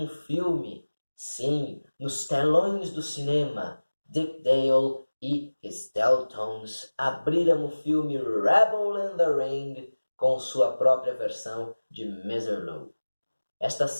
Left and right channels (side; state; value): both; inverted; correlation -1.00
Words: filme. Sim, nos telões do cinema, Dick Dale e his Deltones abriram o filme Rebel in the Ring com sua própria versão de Mr. Lou. Esta